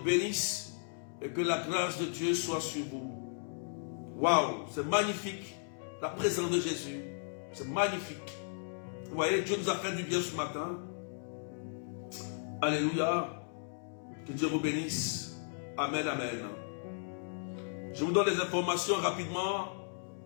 bénisse. Et que la grâce de Dieu soit sur vous. Waouh, c'est magnifique. La présence de Jésus. C'est magnifique. Vous voyez, Dieu nous a fait du bien ce matin. Alléluia. Que Dieu vous bénisse. Amen, amen. Je vous donne les informations rapidement.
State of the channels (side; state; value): right; silent; digital silence